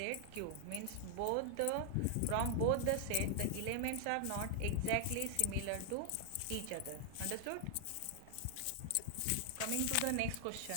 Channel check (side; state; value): both; different; correlation 0.00